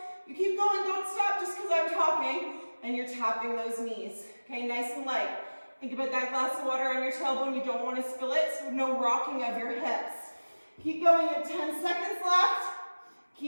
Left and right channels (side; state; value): both; inverted; correlation -1.00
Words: You keep going, don't stop just because I'm talking. And you're tapping those knees. Okay, nice and light. Think about that glass of water on your tailbone. You don't want to spill it, so no rocking of your hips. Keep going, you have 10 seconds left.